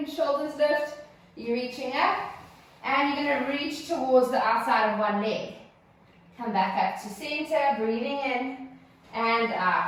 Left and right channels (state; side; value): identical; both; correlation 1.00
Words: shoulders lift. You're reaching up and you're going to reach towards the outside of one leg. Come back up to center, breathing in and